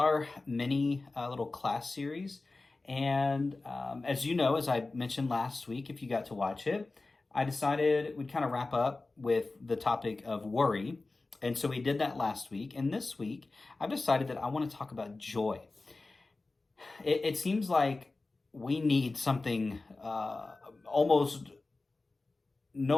mini little class series. And as you know, as I mentioned last week, if you got to watch it, I decided we'd kind of wrap up with the topic of worry. And so we did that last week. And this week, I've decided that I want to talk about joy. It seems like we need something almost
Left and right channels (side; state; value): right; quieter; 3.4 dB